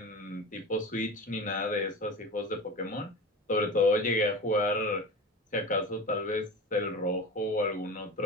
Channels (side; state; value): both; normal; correlation 0.32